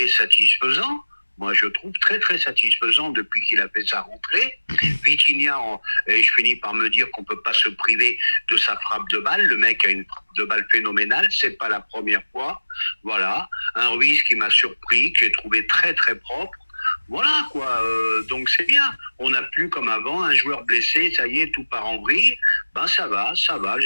satisfaisant. Moi, je trouve très très satisfaisant depuis qu'il a fait sa rentrée. Vitinha, et je finis par me dire qu'on peut pas se priver de sa frappe de balle. Le mec a une frappe de balle phénoménale. C'est pas la première fois. Voilà. Un Ruiz qui m'a surpris, que j'ai trouvé très très propre. Voilà quoi, donc c'est bien. On n'a plus comme avant un joueur blessé, ça y est, tout part en vrille. Ça va,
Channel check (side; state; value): both; inverted; correlation -1.00